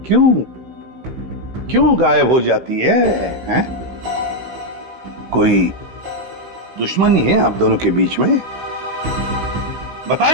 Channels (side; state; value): left; late; 16 ms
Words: क्यों क्यों गायब हो जाती है, हैं? कोई दुश्मनी है आप दोनों के बीच में?